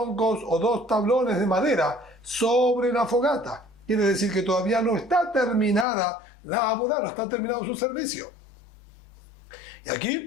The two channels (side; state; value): right; drops out; at 5.9 s